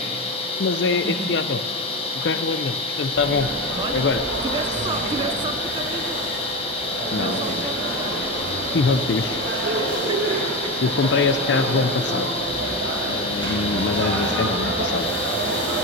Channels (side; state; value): both; normal; correlation 0.19